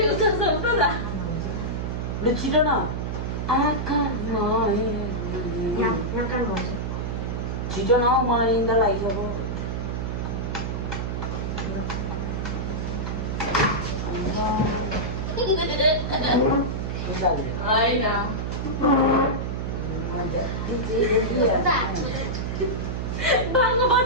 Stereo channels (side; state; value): right; noise; hum, 2 dB below the sound